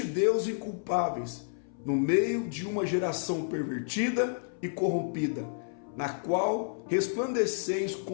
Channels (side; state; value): right; silent; 58 dB below the other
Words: Deus inculpáveis, no meio de uma geração pervertida e corrompida, na qual resplandeceis